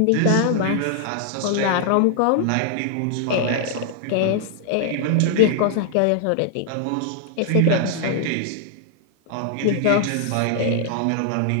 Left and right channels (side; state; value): both; different; correlation 0.00